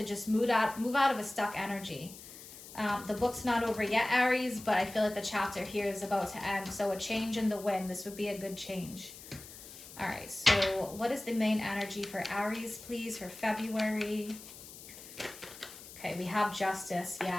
just move out of a stuck energy. The book's not over yet, Aries, but I feel like the chapter here is about to end. So a change in the wind, this would be a good change. All right, so what is the main energy for Aries, please, for February? Okay, we have justice,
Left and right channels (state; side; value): noise; left; hiss, 15 dB below the sound